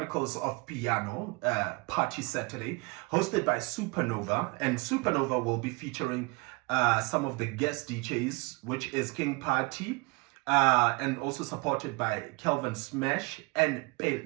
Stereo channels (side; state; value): left; quieter; 28.6 dB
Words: of Piano, Party Saturday, hosted by Supernova, and Supernova will be featuring some of the guest DJs, which is King Party, and also supported by Kelvin Smash and